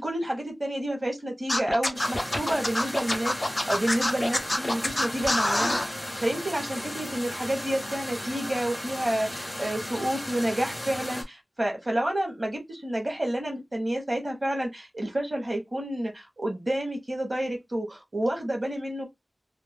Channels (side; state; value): both; normal; correlation 0.97